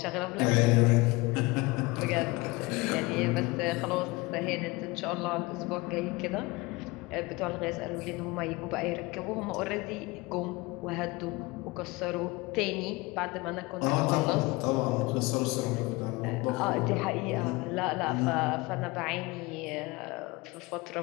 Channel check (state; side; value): quieter; right; 23.3 dB